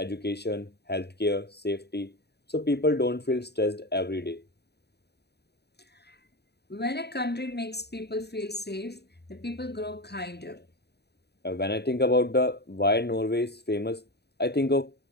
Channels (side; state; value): right; late; 0.48 ms